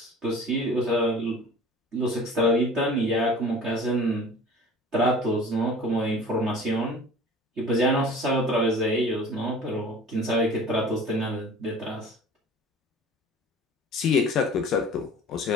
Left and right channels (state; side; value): normal; both; correlation 0.43